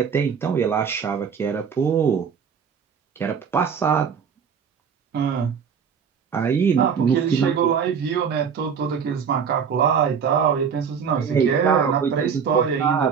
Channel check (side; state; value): left; quieter; 6.8 dB